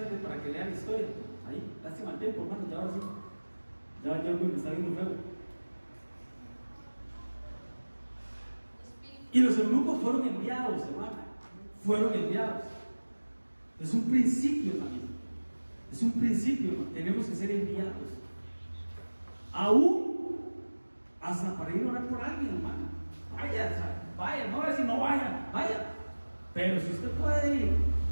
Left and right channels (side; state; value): both; inverted; correlation -1.00